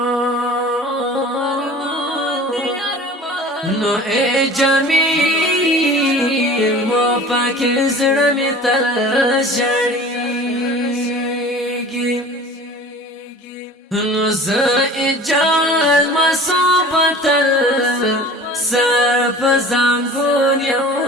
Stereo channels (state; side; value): normal; both; correlation 0.42